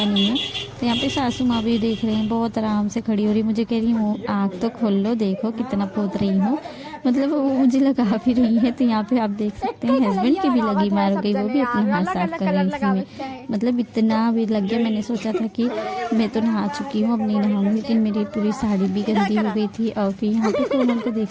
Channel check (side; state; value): both; identical; correlation 1.00